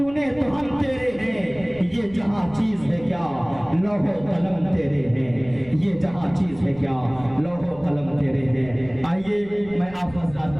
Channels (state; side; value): noise; right; rumble, 20 dB below the sound